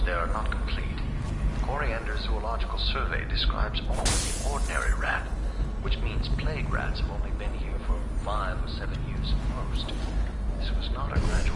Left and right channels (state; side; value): identical; both; correlation 1.00